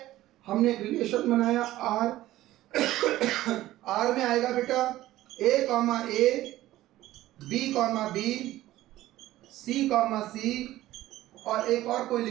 हमने एक रिलेशन बनाया R में आएगा बेटा A कॉमा A, B कॉमा B, सी कॉमा सी, और एक और कोई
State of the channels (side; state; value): left; quieter; 15.4 dB